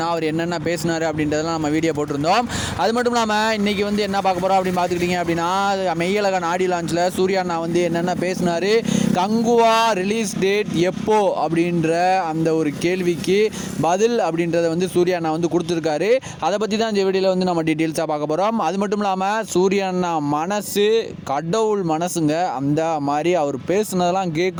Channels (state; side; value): identical; both; correlation 1.00